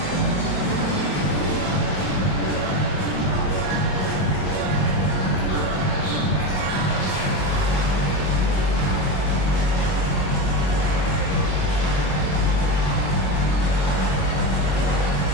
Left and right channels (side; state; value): right; late; 22 ms